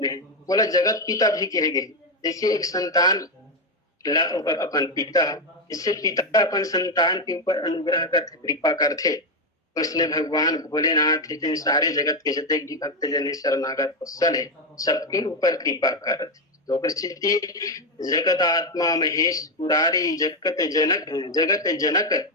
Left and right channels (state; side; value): normal; both; correlation 0.07